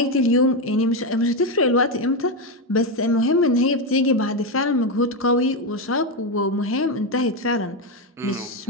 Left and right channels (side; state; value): both; normal; correlation 0.09